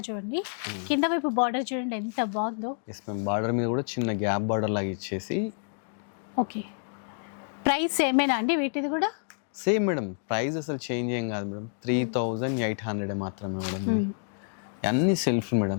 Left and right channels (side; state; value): right; silent; 59 dB below the other